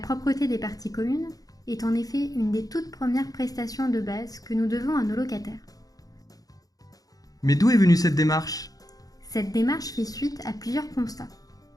des parties communes est en effet une des toutes premières prestations de base que nous devons à nos locataires. Mais d'où est venue cette démarche ? Cette démarche fait suite à plusieurs constats.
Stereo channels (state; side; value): late; right; 0.18 ms